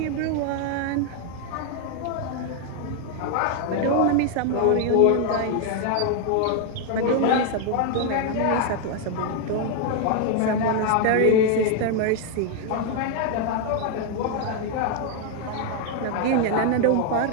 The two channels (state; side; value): different; both; correlation 0.00